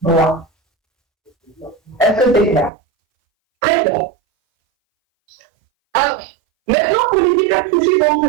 Est-ce que c'est clair? Très bien. Alors, maintenant pour les hypertrophies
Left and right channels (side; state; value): left; drops out; at 2.7 s